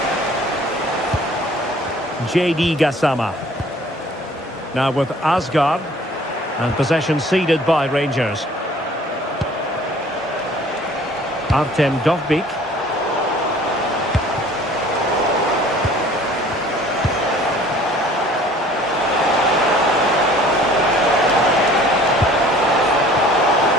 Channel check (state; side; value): normal; both; correlation 0.52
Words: JD Gassama. Now with Asgard, and possession ceded by Rangers. Artem Dovbyk.